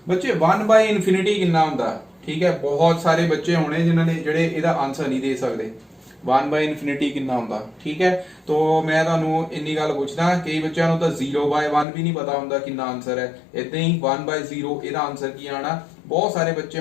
ਬੱਚੇ 1 by infinity ਕਿੰਨਾ ਹੁੰਦਾ, ਠੀਕ ਹੈ, ਬਹੁਤ ਸਾਰੇ ਬੱਚੇ ਹੋਣੇ ਜਿਨ੍ਹਾਂ ਨੇ ਜਿਹੜੇ ਇਹਦਾ ਆਨਸਰ ਨਹੀਂ ਦੇ ਸਕਦੇ। 1 by infinity ਕਿੰਨਾ ਹੁੰਦਾ, ਠੀਕ ਹੈ। तो मैं ਤੁਹਾਨੂੰ ਇੰਨੀ ਗੱਲ ਪੁੱਛਦਾ, ਕਈ ਬੱਚਿਆਂ ਨੂੰ ਤਾਂ 0 by 1 ਵੀ ਨਹੀਂ ਪਤਾ ਹੁੰਦਾ ਕਿੰਨਾ ਆਨਸਰ ਹੈ। ਇਦਾਂ ਹੀ 1 by 0 ਇਹਦਾ ਆਨਸਰ ਕੀ ਆਣਾ। ਬਹੁਤ ਸਾਰੇ ਬੱਚੇ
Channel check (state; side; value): drops out; right; at 11.9 s